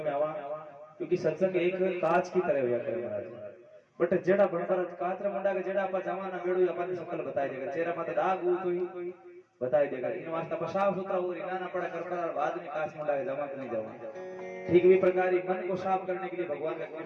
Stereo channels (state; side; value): identical; both; correlation 1.00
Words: में आवा क्योंकि सत्संग एक कांच की तरह हुआ करे महाराज बट जेड़ा बनकर कातरा मुंडा के जेड़ा अपन जमाना बेड़ू अपन शकल बताई देगा चेहरा माथे दाग हो तो ही बताई देगा इन वास्ते पर साफ सुथरा हो रिना ना पड़ा कर पड़ा बाद में कांच मुंडा के जमा नहीं जावा ठीक भी प्रकार ही मन को साफ करने के लिए भगवान का